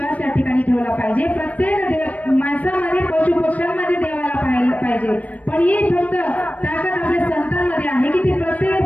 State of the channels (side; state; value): right; late; 0.070 ms